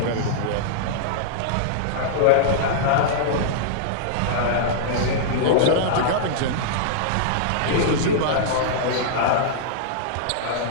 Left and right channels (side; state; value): both; different; correlation -0.02